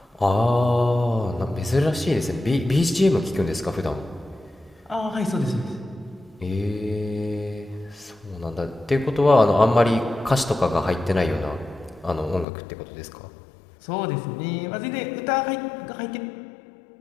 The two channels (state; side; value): drops out; right; at 12.5 s